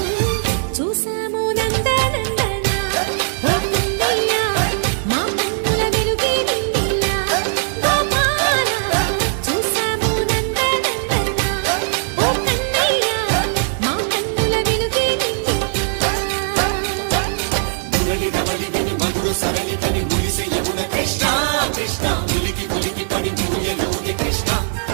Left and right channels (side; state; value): left; silent; digital silence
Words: చూసాము నందనందన ఓ కన్నయ్య మా కన్నుల వెలుగే నిండిలా గోపాల చూసాము నందనందన ఓ కన్నయ్య మా కన్నుల వెలుగే నిండిలా కృష్ణ కృష్ణ ములికి ములికి పడి జూయలోని కృష్ణ